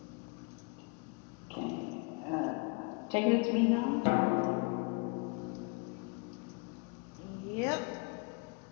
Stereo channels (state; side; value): quieter; right; 32.0 dB